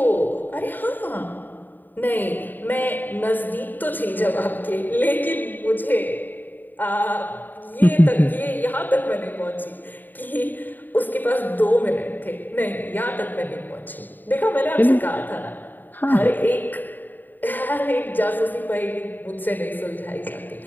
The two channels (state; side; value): late; right; 0.089 ms